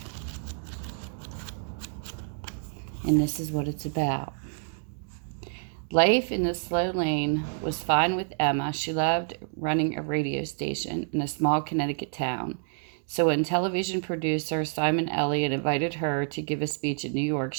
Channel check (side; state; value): left; silent; digital silence